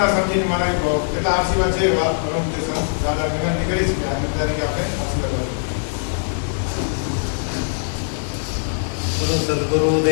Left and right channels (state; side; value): silent; right; digital silence